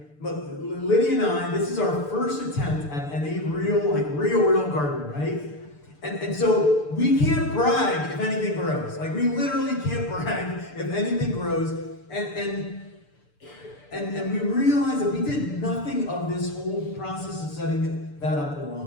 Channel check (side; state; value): right; late; 6.8 ms